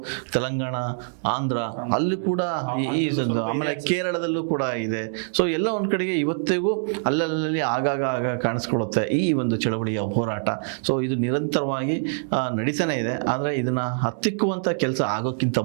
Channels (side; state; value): left; silent; digital silence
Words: ತೆಲಂಗಾಣ, ಆಂಧ್ರ ಅಲ್ಲಿ ಕೂಡ ಆಮೇಲೆ ಕೇರಳದಲ್ಲೂ ಕೂಡ ಇದೆ. ಸೊ ಎಲ್ಲ ಒಂದ್ ಕಡೆಗೆ ಇವತ್ತಿಗೂ ಅಲ್ಲಲ್ಲಿ ಆಗಾಗ ಕಾಣಿಸ್ಕೊಳ್ಳುತ್ತೆ ಈ ಒಂದು ಚಳವಳಿಯ ಹೋರಾಟ. ಸೊ ಇದು ನಿರಂತರವಾಗಿ ನಡೀತಾನೆ ಇದೆ. ಆದ್ರೆ ಇದನ್ನ ಹತ್ತಿಕ್ಕುವಂತ ಕೆಲಸ ಆಗೋಕ್ಕಿಂತ